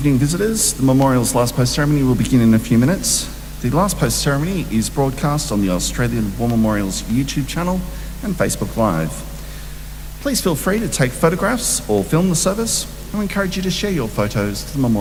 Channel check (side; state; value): both; identical; correlation 1.00